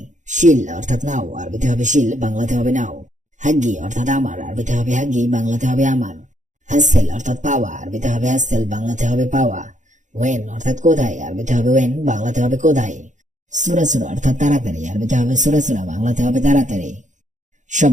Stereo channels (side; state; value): left; late; 0.36 ms